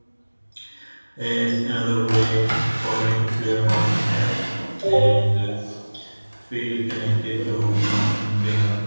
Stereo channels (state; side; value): inverted; both; correlation -1.00